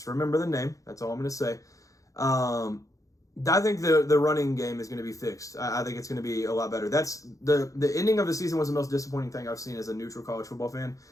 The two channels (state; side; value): late; right; 0.16 ms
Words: remember the name. That's all I'm going to say. I think the running game is going to be fixed. I think it's going to be a lot better. That's the ending of the season was the most disappointing thing I've seen as a neutral college football fan.